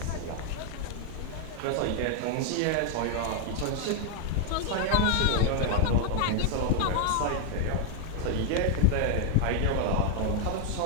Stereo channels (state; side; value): different; both; correlation 0.00